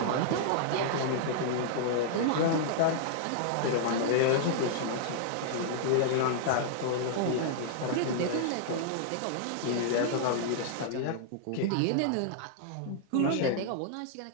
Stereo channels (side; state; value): both; different; correlation -0.01